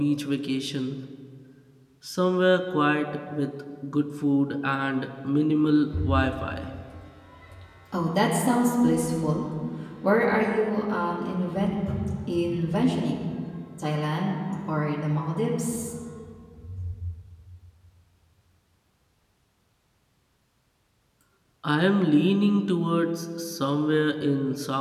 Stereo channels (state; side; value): identical; both; correlation 1.00